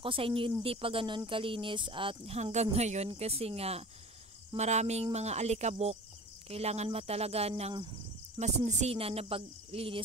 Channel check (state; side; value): normal; both; correlation 0.39